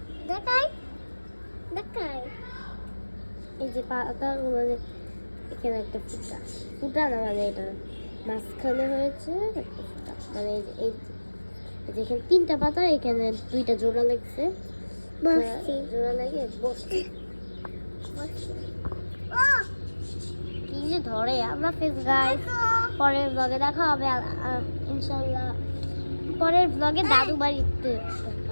দেখাই এই যে পাতা, এখানে একটা ফুটা না, মানে এটা মাঝখানে হয়েছে একটা ফুটা, মানে এই যেখানে 3টা পাতা, এখানে 2টা জোড়া লাগছে, জোড়া লাগে বসছে। কি যে ধরে আমরা ফেস গাইস, পরের ব্লগে দেখা হবে ইনশাআল্লাহ, পরের ব্লগে দাদু বাড়িতে দেখা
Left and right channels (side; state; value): both; inverted; correlation -1.00